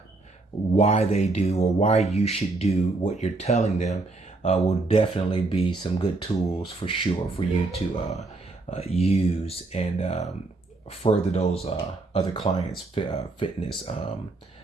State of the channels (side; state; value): left; quieter; 3.3 dB